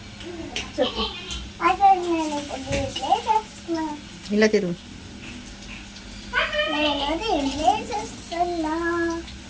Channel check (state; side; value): identical; both; correlation 1.00